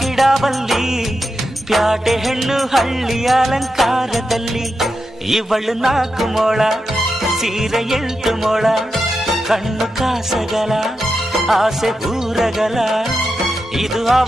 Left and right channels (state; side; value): normal; both; correlation 0.88